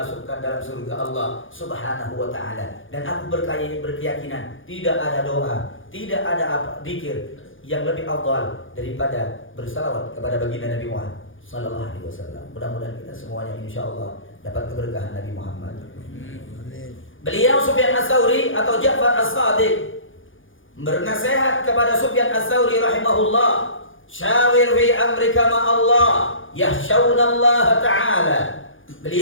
dalam surga Allah Subhanahu wa taala. Dan aku berkeyakinan tidak ada doa, tidak ada zikir yang lebih afdal daripada bersalawat kepada baginda Nabi Muhammad sallallahu alaihi wasallam. Mudah-mudahan kita semuanya insyaallah dapat keberkahan Nabi Muhammad. Beliau Sufyan Ats-Tsauri atau Ja'far As-Shadiq bernasihat kepada Sufyan Ats-Tsauri rahimahullah, syawir fi amrika ma Allah yakhshawna Allah ta'ala.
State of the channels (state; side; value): late; right; 0.58 ms